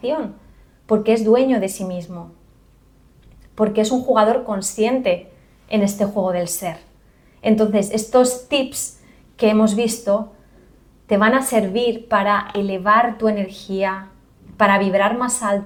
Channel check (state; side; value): identical; both; correlation 1.00